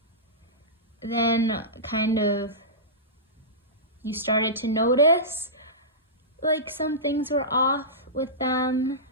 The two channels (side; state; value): both; normal; correlation -0.18